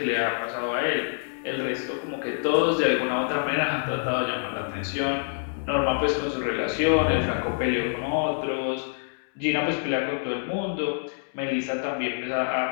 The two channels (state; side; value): silent; right; digital silence